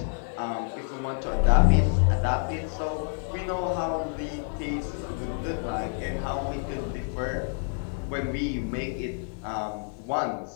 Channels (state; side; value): silent; right; 59 dB below the other